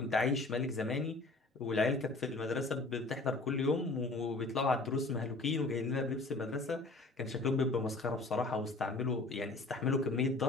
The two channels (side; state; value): right; quieter; 3.2 dB